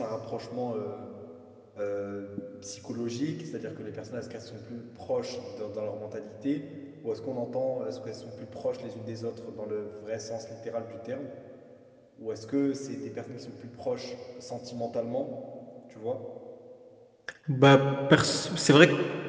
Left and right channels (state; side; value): identical; both; correlation 1.00